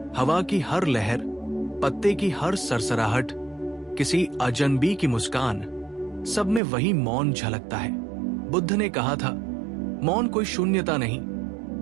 हवा की हर लहर, पत्ते की हर सरसराहट, किसी अजनबी की मुस्कान, सब में वही मौन झलकता है। बुद्ध ने कहा था, मौन कोई शून्यता नहीं,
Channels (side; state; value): left; drops out; at 6.6 s